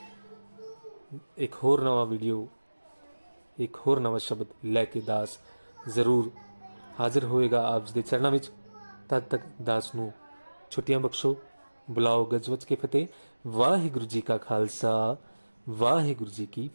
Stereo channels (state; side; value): inverted; both; correlation -1.00